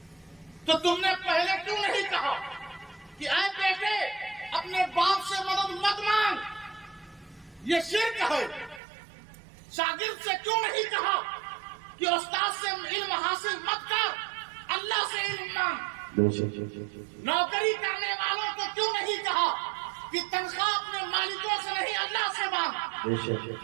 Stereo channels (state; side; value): drops out; left; at 8.8 s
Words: تو تم نے پہلے کیوں نہیں کہا کہ اے بیٹے اپنے باپ سے مدد مت مانگ، یہ شرک ہے؟ شاگرد سے کیوں نہیں کہا کہ استاد سے علم حاصل مت کر، اللہ سے علم مانگ؟ نوکری کرنے والوں کو کیوں نہیں کہا کہ تنخواہ اپنے مالکوں سے نہیں اللہ سے مانگ؟